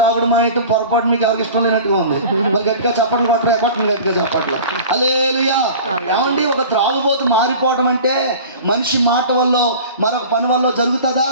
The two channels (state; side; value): inverted; both; correlation -0.39